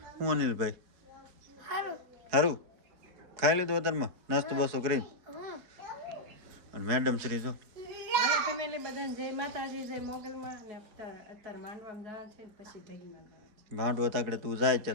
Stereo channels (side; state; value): left; late; 4.7 ms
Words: હું અનિલભાઈ સારું ખાઈ લીધું અત્યારમાં નાસ્તો બાસ્તો કરીને? અને મેડમ શ્રી જો હાલો ફેમિલી બધાને જય માતાજી, જય મોગલમાં. અને અત્યારે માંડવામાં જવાનું છે, પછી ઢગીમાં જવાનું છે. માંડવો તાકડે તું જાય